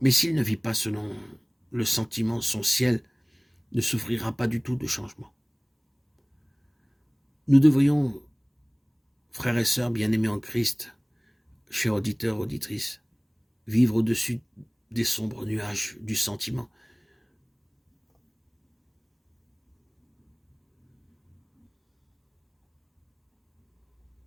s'il ne vit pas selon le sentiment, son ciel ne souffrira pas du tout de changement. Nous devrions, frères et sœurs bien-aimés en Christ, chers auditeurs, auditrices, vivre au-dessus des sombres nuages du sentiment,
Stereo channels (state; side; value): identical; both; correlation 1.00